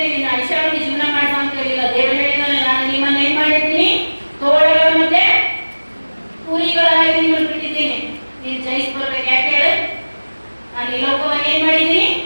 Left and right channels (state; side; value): inverted; both; correlation -1.00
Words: ನಿನ್ನ ಐಷಾರಾಮಿ ಜೀವನ ಮಾಡ ಅಂತ ಹೇಳಿಲ್ಲ. ದೇವರು ಹೇಳಿದ್ದಾನೆ, ನಾನು ನಿಮ್ಮನ್ನ ಏನ್ ಮಾಡಿದ್ದೀನಿ? ತೋಳಗಳ ಮತ್ತೆ ಕೂಲಿಗಳಾಗಿ ನಿಮ್ಮನ್ನು ಬಿಟ್ಟಿದ್ದೀನಿ, ನೀನು ಜಯಿಸಿ ಬರ್ಬೇಕು. ಯಾಕೆ ಹೇಳ? ನಾನು ಈ ಲೋಕವನ್ನು ಏನ್ ಮಾಡಿದ್ದೀನಿ?